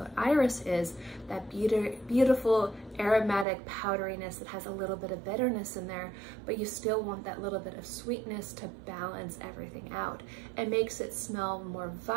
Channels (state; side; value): drops out; left; at 3.5 s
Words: iris is, that beautiful aromatic powderiness that has a little bit of bitterness in there, but you still want that little bit of sweetness to balance everything out. It makes it smell more